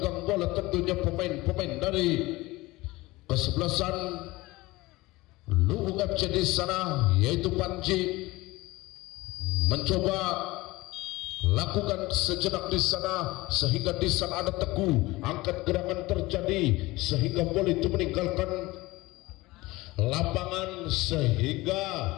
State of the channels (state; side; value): quieter; right; 20.4 dB